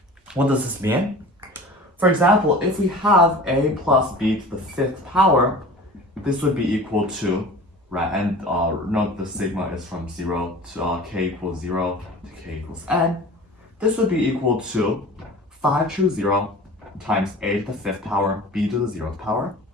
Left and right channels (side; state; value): both; normal; correlation 0.40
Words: What does this mean? For example, if we have a plus b to the fifth power, this would be equal to, right, and note the sigma is from 0 to k equals 0 to k equals n. This would be equal to 5 choose 0 times a to the fifth power, b to the 0th power,